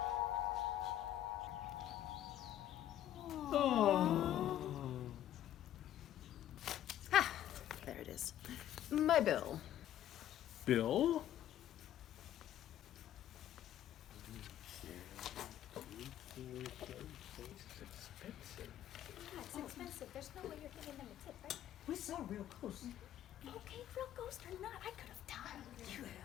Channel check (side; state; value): right; quieter; 11.8 dB